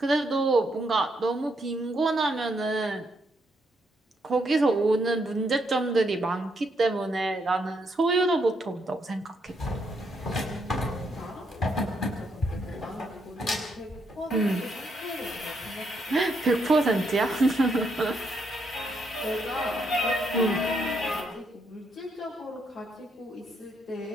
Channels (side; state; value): both; normal; correlation 0.76